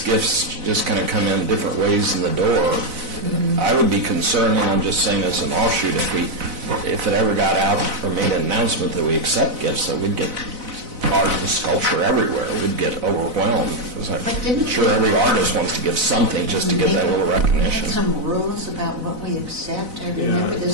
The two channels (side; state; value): left; late; 4.0 ms